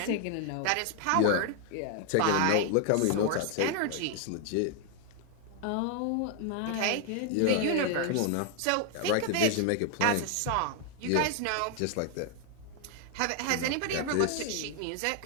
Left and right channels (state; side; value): different; both; correlation 0.00